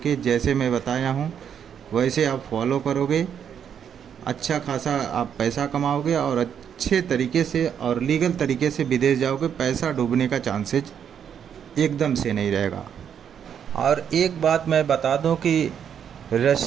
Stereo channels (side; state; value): left; quieter; 8.3 dB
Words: जैसे मैं बताया हूँ वैसे आप फॉलो करोगे। अच्छा खासा आप पैसा कमाओगे और अच्छे तरीके से और लीगल तरीके से विदेश जाओगे। पैसा डूबने का चांसेस एकदम से नहीं रहेगा। और एक बात मैं बता दूं कि